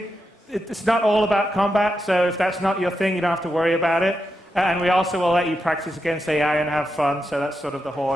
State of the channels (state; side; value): normal; both; correlation 0.86